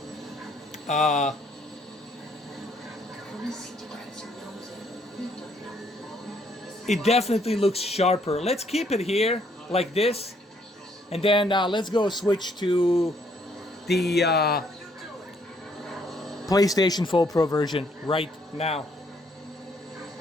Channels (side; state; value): both; normal; correlation 0.68